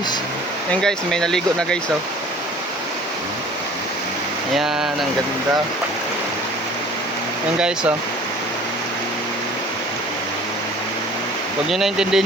Ayan guys, may naligo na guys oh. Ayan, ang ganda. Ayan guys oh. Huwag nyo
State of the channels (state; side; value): normal; both; correlation 0.48